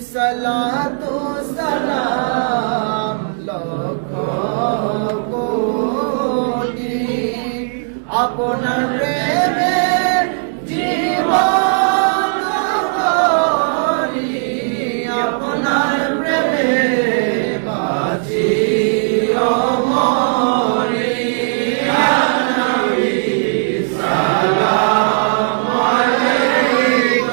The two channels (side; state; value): left; silent; digital silence